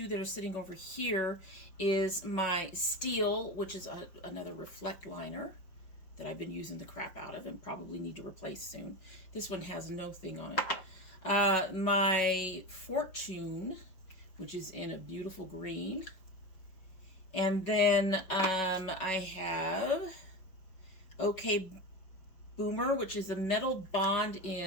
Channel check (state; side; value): late; right; 5.4 ms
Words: that are sitting over here, is my Steel, which is another Reflect liner that I've been using the crap out of and probably need to replace soon. This one has no thing on it. My Fortune, which is in a beautiful green. And then I have OK Boomer, which is a Metal Bond